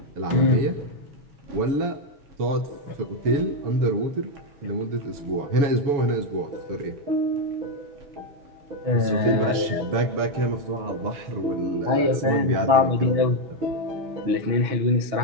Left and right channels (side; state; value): left; late; 7.1 ms